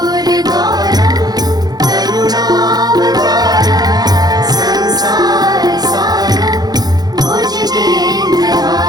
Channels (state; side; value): late; left; 0.19 ms